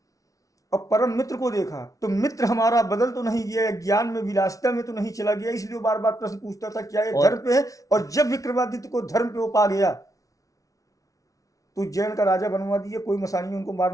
और परम मित्र को देखा तो मित्र हमारा बदल तो नहीं गया, ज्ञान में विलासिता में तो नहीं चला गया, इसलिए वो बार बार प्रश्न पूछता था क्या ये धर्म पे है। और जब विक्रमादित्य को धर्म पे वो पा गया तो उज्जैन का राजा बनवा दिया। कोई मसानी उनको मार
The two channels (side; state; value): right; late; 0.17 ms